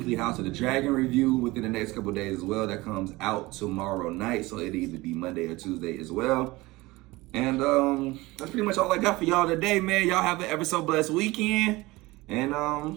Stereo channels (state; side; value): quieter; left; 20.9 dB